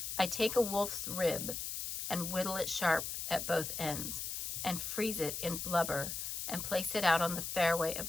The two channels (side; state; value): left; noise; hiss, 4 dB below the sound